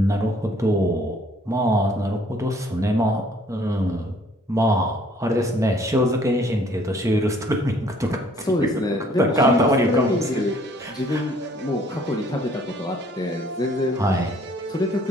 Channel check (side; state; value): both; normal; correlation 0.60